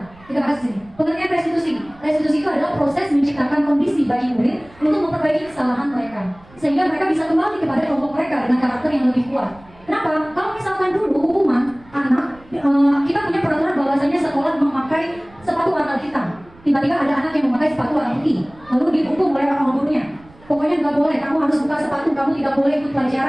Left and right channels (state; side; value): noise; right; rumble, 25 dB below the sound